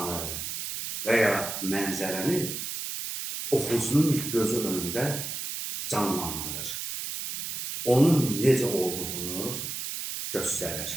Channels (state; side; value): noise; right; hiss, 5 dB below the sound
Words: və ya mənzərəni oxucunun gözü önündə canlandırır. Onun necə olduğunu